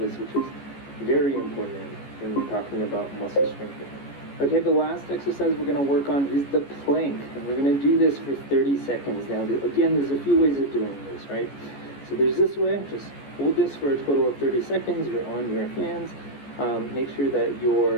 which is very important when we're talking about muscle strengthening. Okay, the last exercise we're going to work on is the plank, and we're going to do this for 30 seconds. Now, again, there's a few ways of doing this, right? So there's this way, just hold this for a total of 30 seconds, you're on your hands, Make sure that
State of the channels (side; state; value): right; late; 14 ms